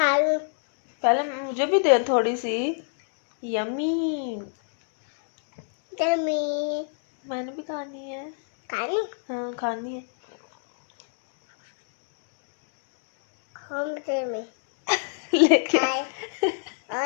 रही हूँ। पहले मुझे भी दे थोड़ी सी। यम्मी। यम्मी। मैंने भी खानी है। खानी? हाँ खानी है। होम से में लेके खाए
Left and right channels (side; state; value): right; silent; digital silence